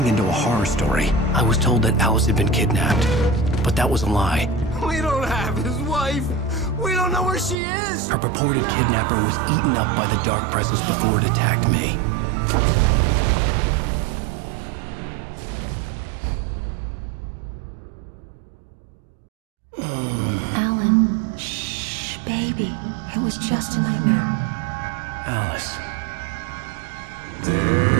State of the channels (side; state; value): left; drops out; at 7.6 s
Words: into a horror story. I was told that Alice had been kidnapped, but that was a lie. We don't have his wife. We don't know where she is. Her purported kidnapper was eaten up by the dark presence before it attacked me. Alan, shh, baby. It was just a nightmare. Alice. There